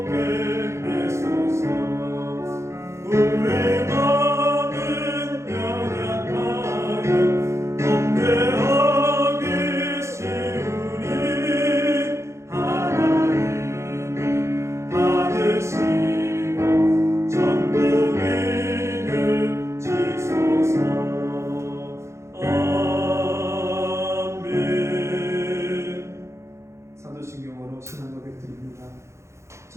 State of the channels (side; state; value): left; late; 0.14 ms